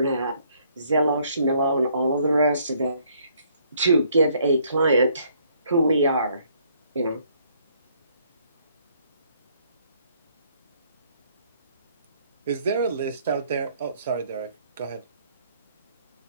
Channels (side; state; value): both; inverted; correlation -0.66